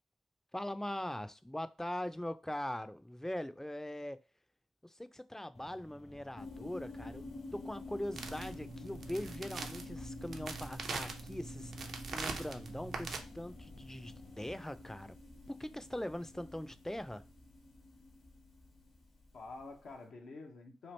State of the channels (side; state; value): both; normal; correlation 0.93